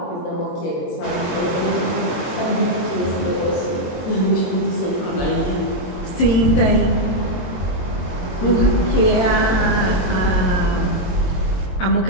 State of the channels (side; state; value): right; late; 22 ms